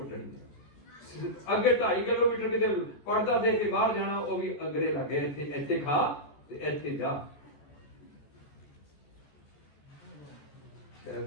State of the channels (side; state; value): right; late; 14 ms